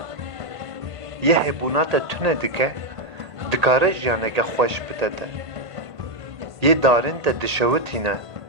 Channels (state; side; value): late; left; 1.8 ms